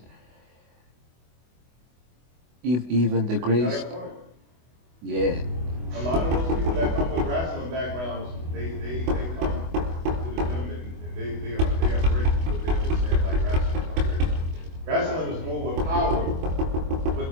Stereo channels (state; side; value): late; left; 24 ms